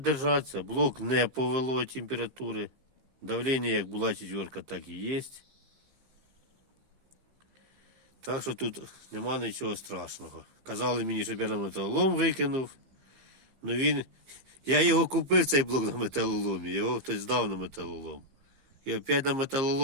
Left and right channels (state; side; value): late; left; 15 ms